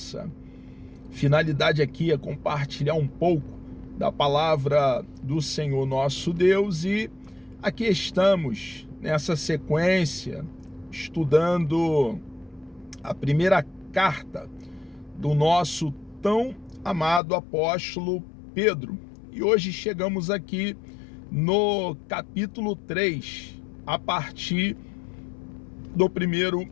finalidade aqui é compartilhar um pouco da palavra do Senhor nosso Deus, e aqui estamos nessa sequência estudando a primeira carta do nosso tão amado apóstolo Pedro. E hoje chegamos aqui no capítulo 3, a partir do primeiro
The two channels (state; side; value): drops out; right; at 17.2 s